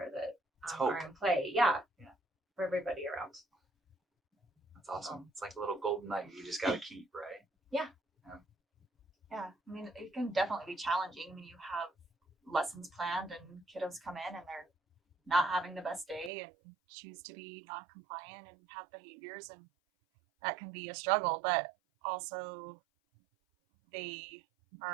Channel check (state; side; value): drops out; left; at 16.3 s